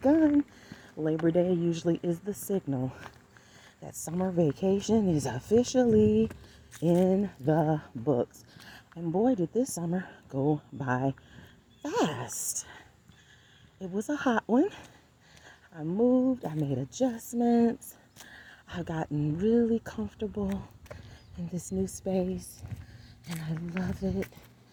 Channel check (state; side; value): identical; both; correlation 1.00